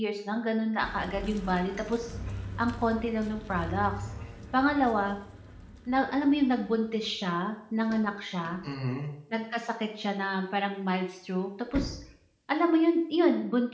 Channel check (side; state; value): both; identical; correlation 1.00